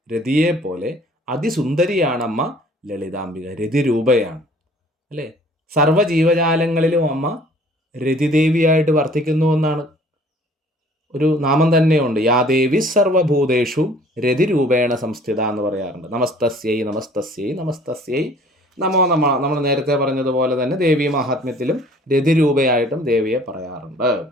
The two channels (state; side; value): normal; both; correlation 0.53